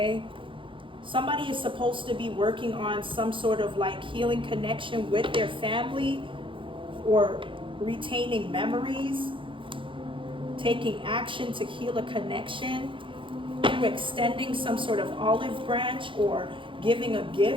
somebody is supposed to be working on some sort of healing connection with their family or retaining memories, taking action to heal a connection through extending some sort of olive branch or giving a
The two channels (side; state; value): left; late; 0.25 ms